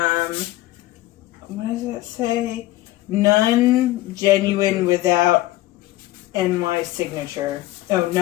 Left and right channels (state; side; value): quieter; right; 16.7 dB